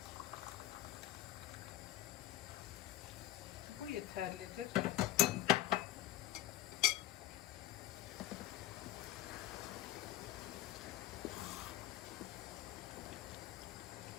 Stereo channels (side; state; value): right; quieter; 14.5 dB